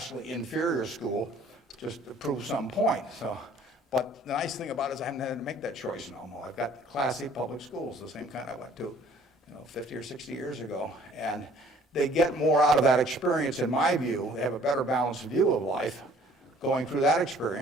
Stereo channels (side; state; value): both; normal; correlation 0.56